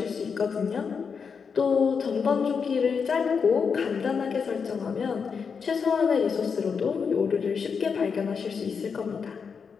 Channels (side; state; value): right; quieter; 5.9 dB